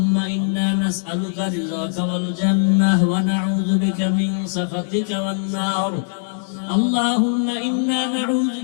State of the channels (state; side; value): silent; right; digital silence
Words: إنا نسألك رضاك والجنة ونعوذ بك من سخطك والنار. اللهم إنا نعوذ